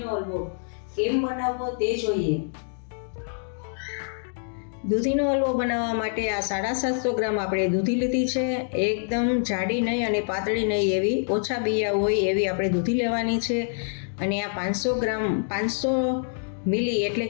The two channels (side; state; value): right; silent; digital silence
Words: હલવો કેમ બનાવવો તે જોઈએ. દૂધીનો હલવો બનાવવા માટે આ 750 ગ્રામ આપણે દૂધી લીધી છે. એકદમ જાડી નહીં અને પાતળી નહીં એવી, ઓછા બિયા હોય એવી આપણે દૂધી લેવાની છે. અને આ 500 મિલી એટલે